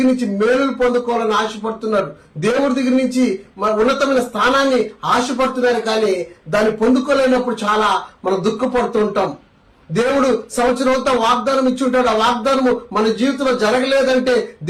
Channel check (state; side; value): identical; both; correlation 1.00